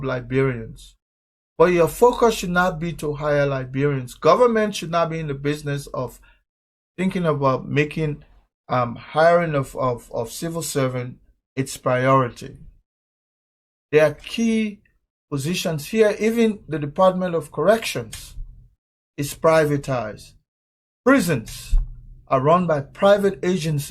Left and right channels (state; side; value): identical; both; correlation 1.00